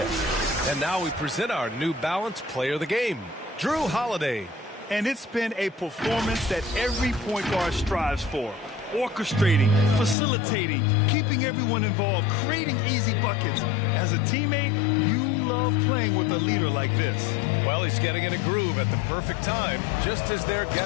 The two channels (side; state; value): right; drops out; at 10.2 s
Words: And now we present our New Balance Player of the Game, Jrue Holiday. And it's been a performance that every point guard strives for. Orchestrating, facilitating, keeping everyone involved, creating easy buckets. As a teammate, you love playing with a leader like this. Well, he's getting in a groove at the perfect time, just as they're